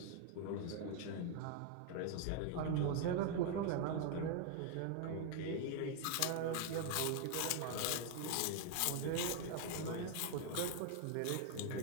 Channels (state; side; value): different; both; correlation 0.00